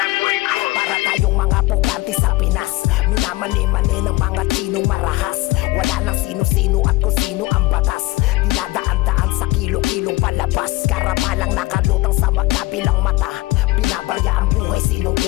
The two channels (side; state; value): right; quieter; 19.5 dB